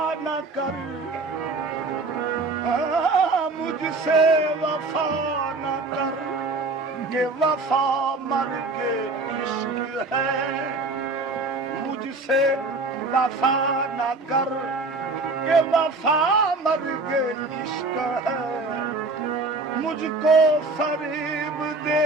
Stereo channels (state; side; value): quieter; left; 3.5 dB